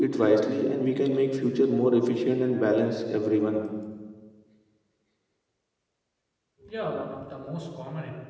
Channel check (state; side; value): identical; both; correlation 1.00